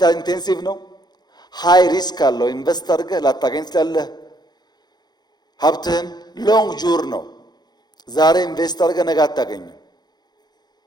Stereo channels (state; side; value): late; right; 0.20 ms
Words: ኢንቴንሲቭ ነው። ሃይ ሪስክ አለው። ኢንቨስት አድርገህ ላታገኝ ትችላለህ። ሀብትህን ሎንግ ጁር ነው። ዛሬ ኢንቨስት አድርገህ ነገ አታገኝም።